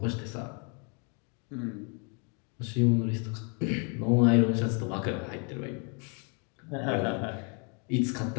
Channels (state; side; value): quieter; right; 37.4 dB